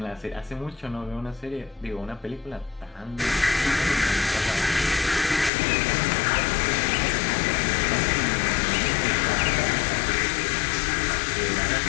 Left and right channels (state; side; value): drops out; right; at 5.5 s